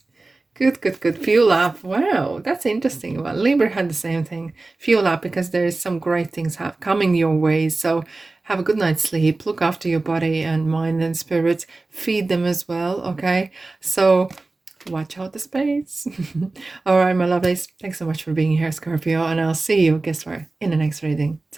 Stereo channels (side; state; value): left; quieter; 3.3 dB